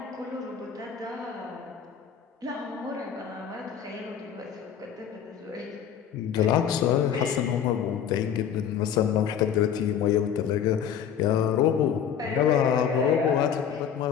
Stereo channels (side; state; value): right; quieter; 8.4 dB